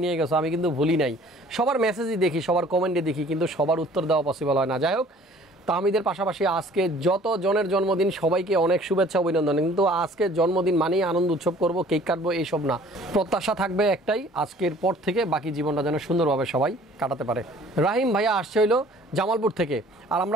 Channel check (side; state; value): both; normal; correlation 0.53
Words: নিয়ে গেছো, আমি কিন্তু ভুলি নাই। সবার মেসেজই দেখি, সবার কমেন্টে দেখি, কিন্তু সবার উত্তর দেওয়া পসিবল হয় না। যাই হোক, তাহমিদের পাশাপাশি আজকে যত জনের জন্মদিন সবাইকে অনেক শুভেচ্ছা অভিনন্দন। কিন্তু আজকে জন্মদিন মানেই আনন্দ উৎসব করব, কেক কাটবো, এইসব না। প্রত্যাশা থাকবে একটাই, আজকের পর থেকে বাকি জীবনটা যেন সুন্দরভাবে সবাই কাটাতে পারে। রাহিম ভাইয়া আসছে হইলো জামালপুর থেকে, আর